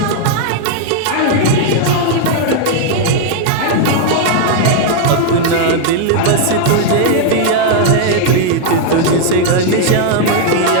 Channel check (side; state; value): both; different; correlation 0.00